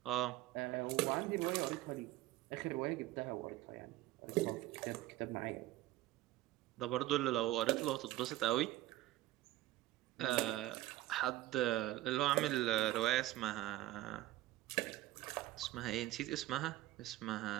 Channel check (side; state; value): left; quieter; 15.9 dB